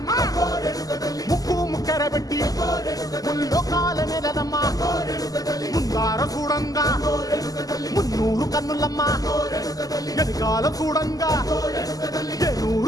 ముక్కు ముక్కెర పెట్టి ముల్లోకాల నెలనమ్మా ముందార చూడంగా మున్నూరు కన్నులమ్మా వెనకాల చూడంగా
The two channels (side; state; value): right; late; 0.17 ms